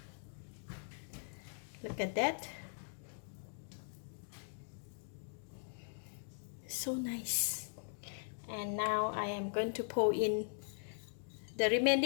Look at that. So nice. And now I am going to pour in the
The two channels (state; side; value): silent; right; digital silence